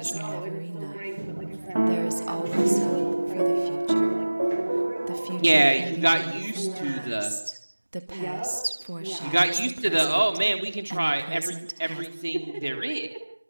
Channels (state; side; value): inverted; both; correlation -1.00